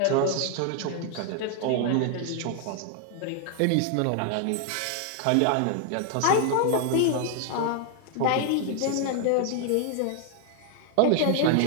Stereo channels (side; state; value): both; different; correlation 0.00